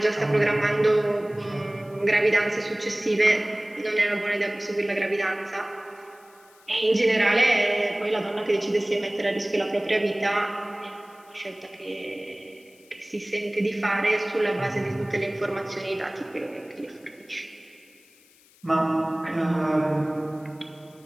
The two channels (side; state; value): left; noise; hiss, 29 dB below the sound